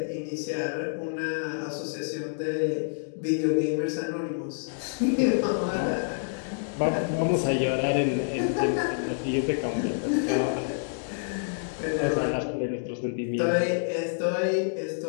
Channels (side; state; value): right; silent; digital silence